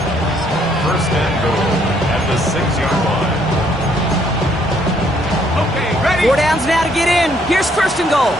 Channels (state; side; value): normal; both; correlation 0.68